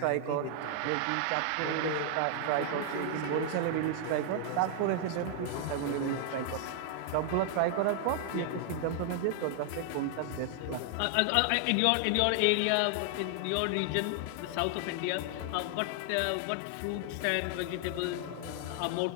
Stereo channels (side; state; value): both; different; correlation 0.00